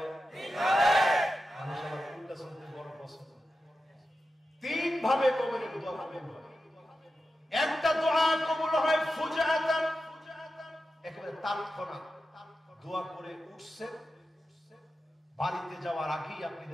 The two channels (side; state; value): both; normal; correlation 0.91